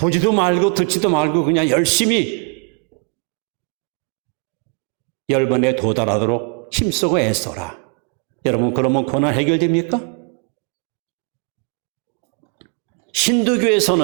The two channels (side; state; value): left; quieter; 34.6 dB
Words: 말고 듣지도 말고 그냥 열심히 열반에 도달하도록 힘쓰고 애써라. 여러분, 그러면 고난 해결됩니까?